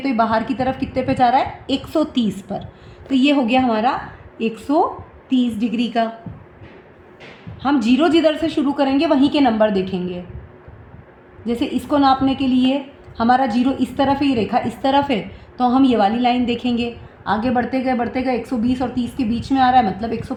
ये बाहर की तरफ कितने पे जा रहा है, 130 पर। तो ये हो गया हमारा 130 डिग्री का। हम 0 जिधर से शुरू करेंगे वहीं के नंबर देखेंगे। जैसे इसको नापने के लिए हमारा 0 इस तरफ है, ये रेखा इस तरफ है, तो हम ये वाली लाइन देखेंगे। आगे बढ़ते गए 120 और 30 के बीच में आ रहा है, मतलब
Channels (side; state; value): both; identical; correlation 1.00